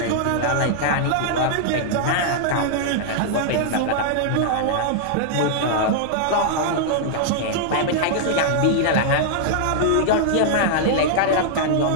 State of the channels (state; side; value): different; both; correlation -0.01